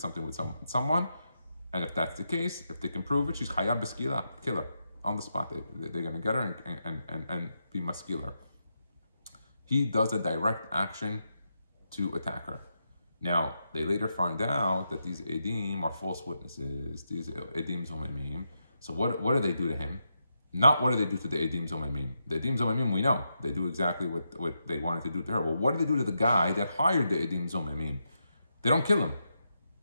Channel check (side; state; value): both; inverted; correlation -0.84